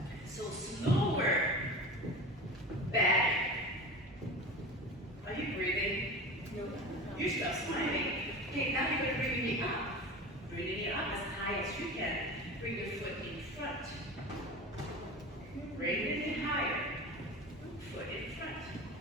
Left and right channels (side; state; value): both; normal; correlation 0.32